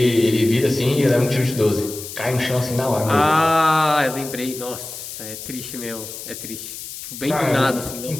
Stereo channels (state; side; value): noise; left; hiss, 11 dB below the sound